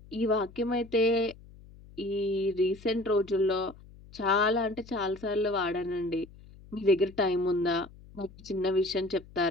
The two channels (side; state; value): left; noise; hum, 21 dB below the sound